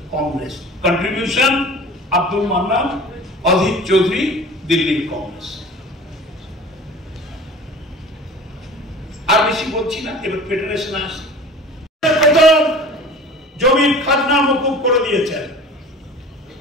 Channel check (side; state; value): both; normal; correlation 0.41